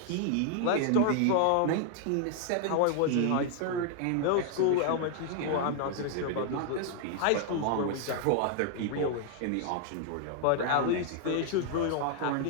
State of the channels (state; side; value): different; both; correlation 0.00